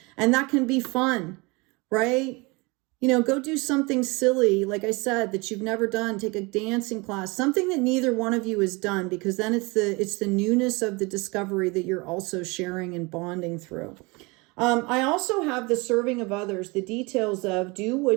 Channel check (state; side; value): quieter; left; 26.5 dB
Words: And that can be fun, right? You know, go do something silly, like I said, that you've never done. Take a dancing class, something that neither one of you has done, because then it's the newness of the discovery that you're also sharing and bonding through. I also have the serving of others, the details of do